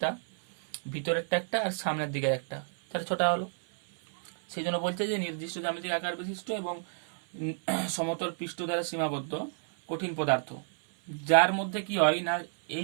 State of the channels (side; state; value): left; silent; 58 dB below the other